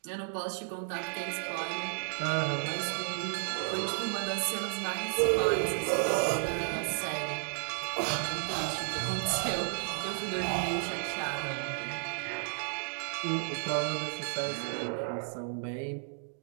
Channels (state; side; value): silent; left; digital silence